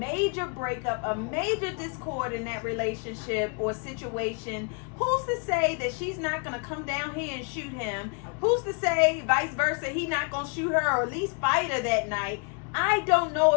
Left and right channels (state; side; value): quieter; right; 38.0 dB